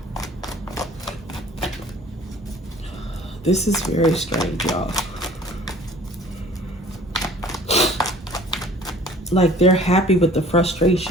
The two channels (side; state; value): both; normal; correlation 0.50